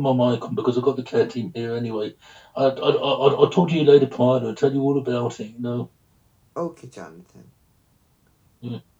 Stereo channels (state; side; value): identical; both; correlation 1.00